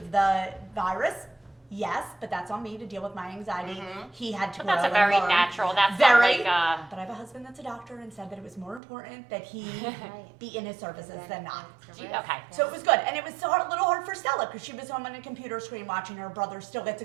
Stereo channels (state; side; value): drops out; left; at 8.8 s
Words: the virus? Yes, but that's on me to deal with my anxiety. He had to But grow that's a and very learn. natural. That's Very. not like. But I have a husband that's a doctor and said that it was more important that he be in his services than not. Okay. So it was good, and it was a little hard for Stella because she was home on a computer screen watching her brother still get to